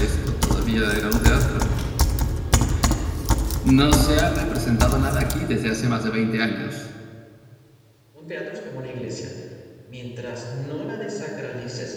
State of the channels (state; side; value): identical; both; correlation 1.00